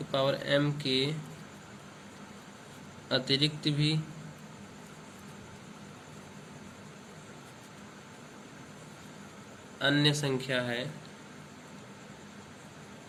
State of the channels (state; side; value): identical; both; correlation 1.00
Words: पावर m के अतिरिक्त भी अन्य संख्या है,